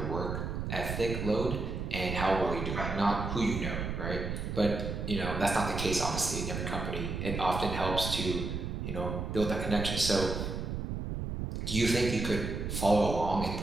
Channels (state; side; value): noise; right; rumble, 4 dB below the sound